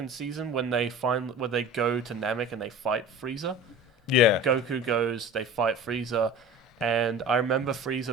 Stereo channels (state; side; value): normal; both; correlation 0.38